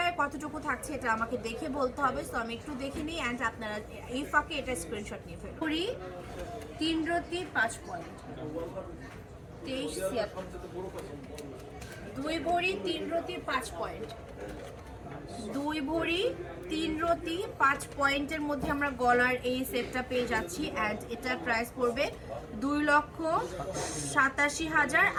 কতটুকু থাকছে এটা আমাকে দেখে বলতে হবে। সো আমি একটু দেখে নিই, অ্যান্ড আপনারা এই ফাঁকে এটা স্ক্রিনশট নিয়ে ফেলুন। 3 রতি 5 পয়েন্ট 23 2 ভরি 3 রতি 5 পয়েন্ট 2 ভরি 3 রতি 5 পয়েন্টের মধ্যে আমরা গলার এই সেটটা পেয়ে যাচ্ছি। অ্যান্ড এটার প্রাইস পড়বে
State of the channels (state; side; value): identical; both; correlation 1.00